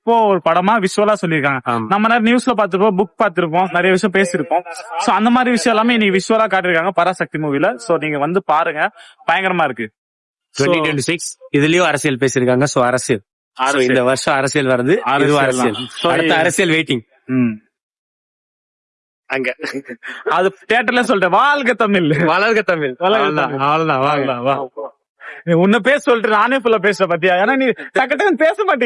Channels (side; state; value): both; identical; correlation 1.00